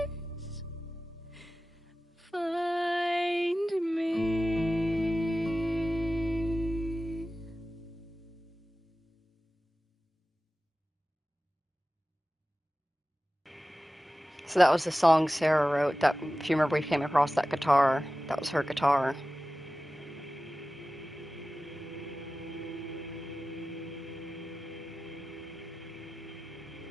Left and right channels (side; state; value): both; normal; correlation 0.95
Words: find me? So that was the song Sarah wrote. That, if you remember, we came across that guitar. That was her guitar.